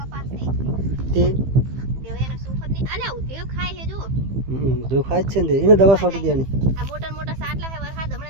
તે જો ખાય છે ને એને દવા છોટી દેવાની। આ મોટા મોટા સાટલા હે વરસાદ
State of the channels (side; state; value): left; late; 15 ms